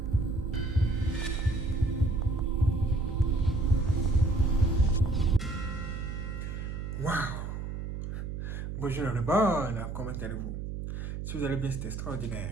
Waouh! Bonjour le bon, comment allez-vous? Si vous allez bien, c'est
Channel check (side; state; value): right; noise; hum, 5 dB below the sound